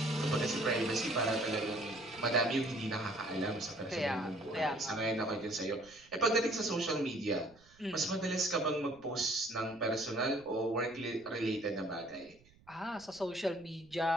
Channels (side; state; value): right; noise; rumble, 28 dB below the sound